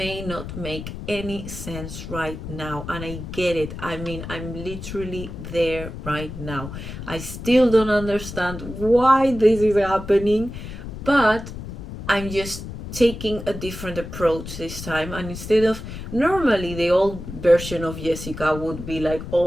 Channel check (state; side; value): noise; left; rumble, 9 dB below the sound